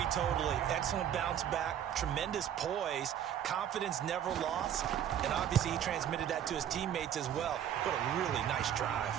totally. Excellent bounce back, tremendous poise, confidence never lost, and obviously he transmitted that to his teammates as well. What a really nice drive.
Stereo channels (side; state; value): left; quieter; 10.0 dB